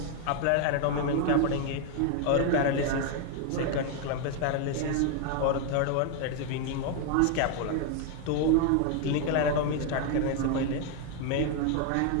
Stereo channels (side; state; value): both; different; correlation 0.00